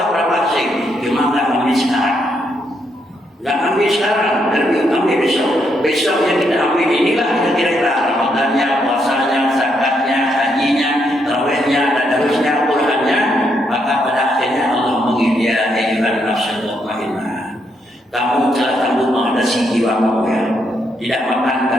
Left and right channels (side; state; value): both; normal; correlation 0.77